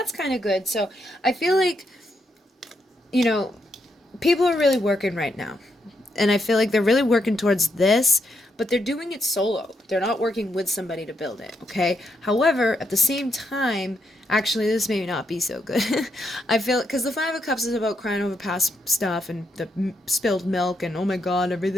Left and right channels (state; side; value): normal; both; correlation 0.80